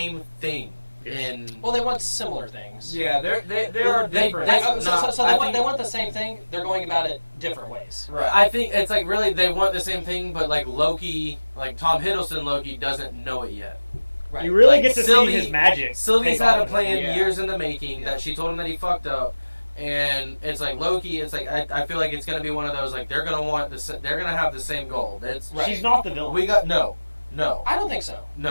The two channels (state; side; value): inverted; both; correlation -1.00